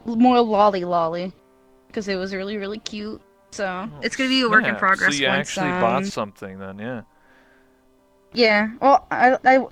more lolly, because it was really cute. So Oh, it's gonna be a work in snap. progress So you once. actually bought something then, yeah. Yeah. Well, I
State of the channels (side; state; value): both; identical; correlation 1.00